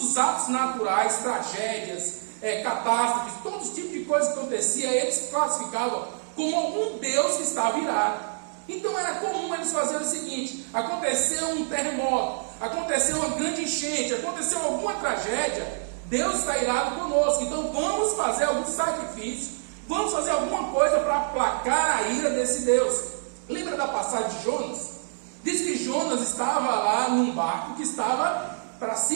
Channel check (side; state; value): left; silent; digital silence